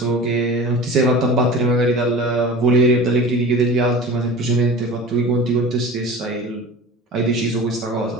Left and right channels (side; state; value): both; normal; correlation 0.36